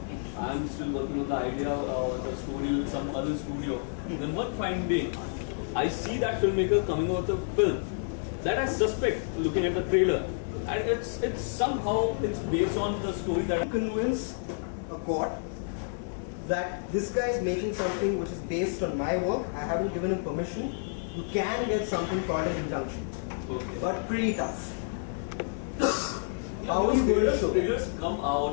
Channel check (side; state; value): right; silent; 58 dB below the other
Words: I'm still working on the idea of the story with some other studio. And then one fine day, I see that filmmaker coming out with a film that I suspect, looking at the trailer, and it's somehow based on the story that I Convince a court that this guy is making something which is based on my work. I haven't given him permission. You can get something called an injunction, but pretty tough. How are you going to show that? Trailers come